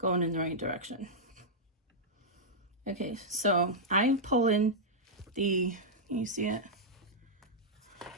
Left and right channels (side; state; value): both; normal; correlation -0.08